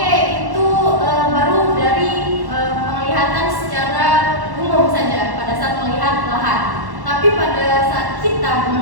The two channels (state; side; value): late; left; 1.1 ms